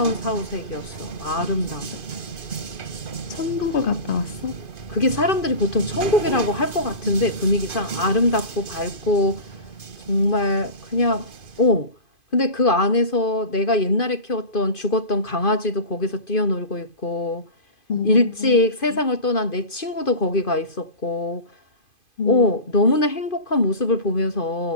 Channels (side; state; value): right; late; 2.5 ms